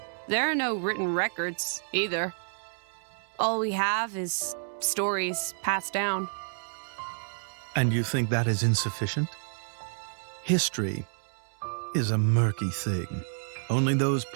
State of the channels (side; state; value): left; silent; digital silence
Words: There are no written records, either. All we have is stories passed down. And you think that is insufficient? History is a murky thing. Only those